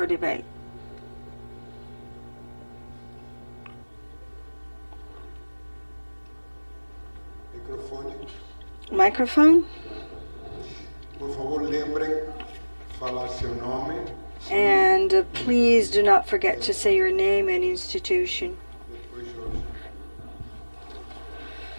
debate. Microphone. And please do not forget to say your name and institution.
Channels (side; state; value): both; inverted; correlation -1.00